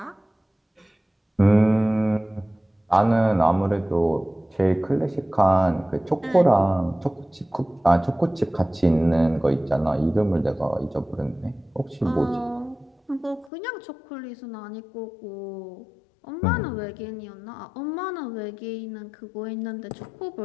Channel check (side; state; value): right; drops out; at 13.5 s